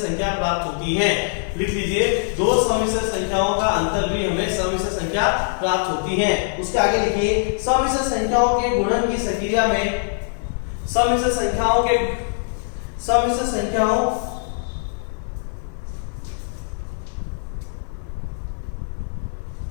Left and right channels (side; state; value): right; silent; 64 dB below the other